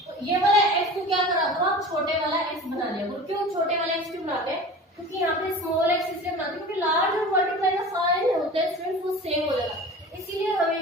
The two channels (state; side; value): normal; both; correlation 0.37